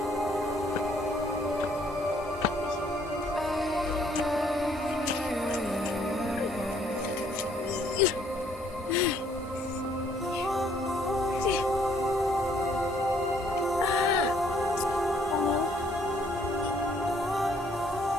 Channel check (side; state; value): both; normal; correlation 0.65